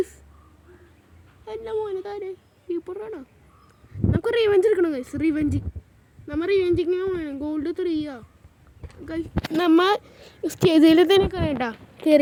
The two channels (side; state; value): both; identical; correlation 1.00